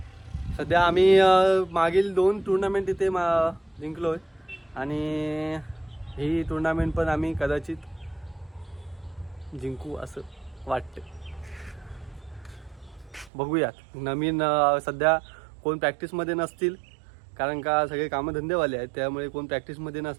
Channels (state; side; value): drops out; left; at 13.3 s